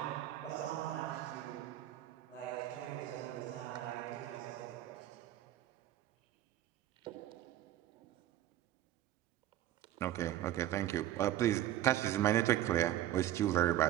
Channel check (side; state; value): left; quieter; 13.1 dB